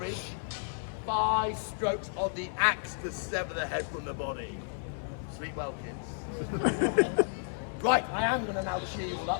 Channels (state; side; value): silent; right; 56 dB below the other